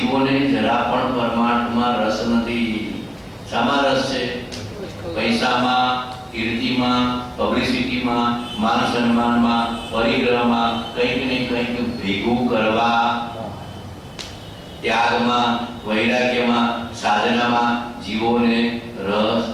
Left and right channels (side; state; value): both; identical; correlation 1.00